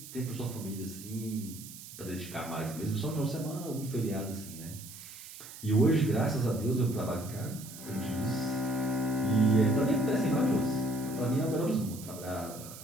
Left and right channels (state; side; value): noise; right; hiss, 14 dB below the sound